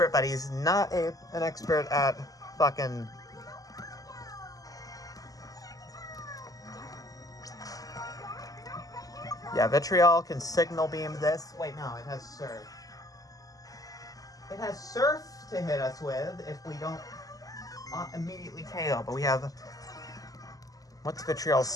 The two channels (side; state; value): right; late; 0.17 ms